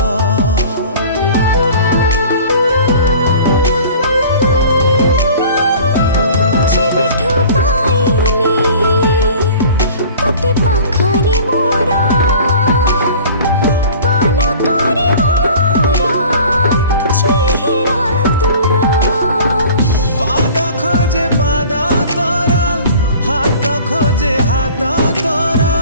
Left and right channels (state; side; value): inverted; both; correlation -0.45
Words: जेबेठू पाइली तते पाखरे मोर पलकरे मोर चेहरा तोर पाद खोजे पाद तोर हाथ खोजे हाथ तोर